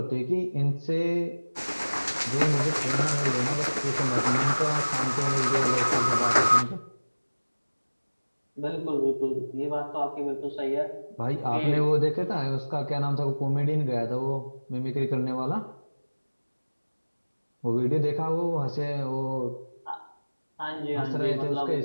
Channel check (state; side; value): inverted; both; correlation -1.00